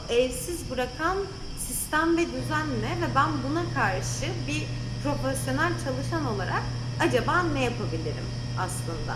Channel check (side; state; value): both; identical; correlation 1.00